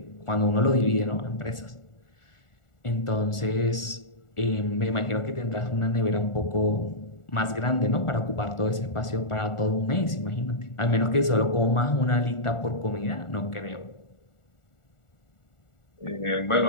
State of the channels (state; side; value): late; right; 1.4 ms